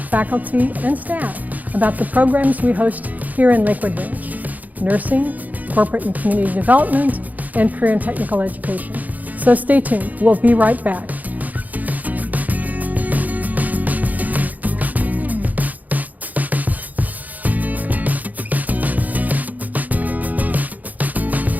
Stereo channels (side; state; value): left; late; 0.079 ms